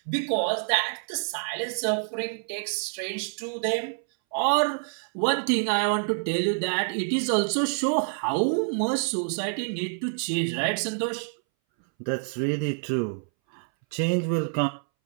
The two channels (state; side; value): silent; left; 60 dB below the other